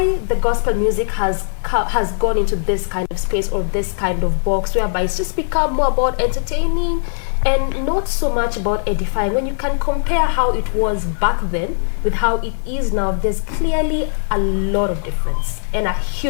the gospel music has gone into this kind of space or this kind of box whereby it's just become more about entertaining and not so much about edifying. When you can compare how it was back then with how it is now, there's clearly a lot of difference, and a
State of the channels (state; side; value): silent; right; 67 dB below the other